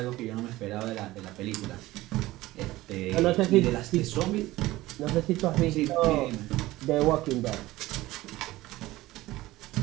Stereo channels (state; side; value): quieter; left; 17.8 dB